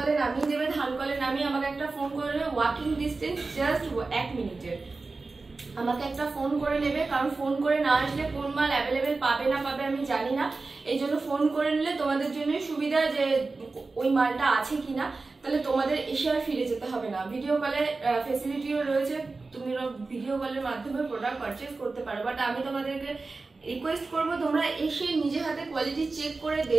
নামিয়ে দেবে, ধানকলে নামিয়ে আমাকে একটা ফোন করে নেবে, ওয়াকিং ডিস্টেন্স জাস্ট 1 মিনিটের। আমাকে একটা ফোন করে নেবে, কারণ ফোন করে না আসলে কোন মাল অ্যাভেলেবেল পাবে না পাবে আমি জানি না। এই জন্য ফোন করে নিলে তোমাদের জন্যই সুবিধা, যে ওই মালটা আছে কিনা, তাহলে তোমাদের এসে আর ফিরে যেতে হবে না। ভিডিও কলের ফেসিলিটিও রয়েছে, তুমি ভিডিও কলের মাধ্যমে প্রোডাক্ট পারচেস করতে পারো। বাট আমি তোমাদেরকে রিকোয়েস্ট করবো তোমরা এসে নিজে হাতে কোয়ালিটি চেক করে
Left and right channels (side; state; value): left; quieter; 3.8 dB